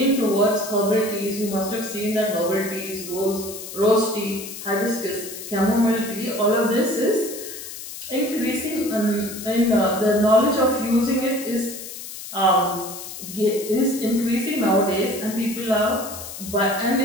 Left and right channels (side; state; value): left; noise; hiss, 11 dB below the sound